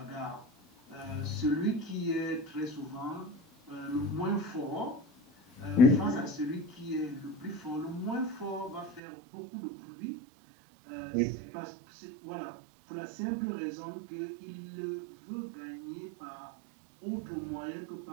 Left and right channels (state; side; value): drops out; left; at 9.0 s